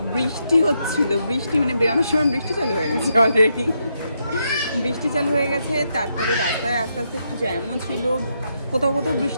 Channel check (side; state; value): both; inverted; correlation -0.80